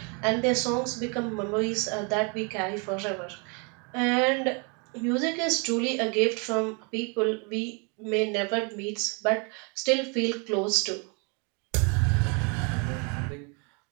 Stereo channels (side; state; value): left; quieter; 34.4 dB